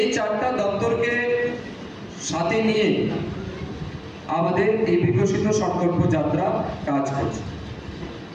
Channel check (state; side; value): identical; both; correlation 1.00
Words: চারটা দপ্তরকে সাথে নিয়ে আমাদের এই বিকশিত সংকল্প যাত্রা কাজ করছে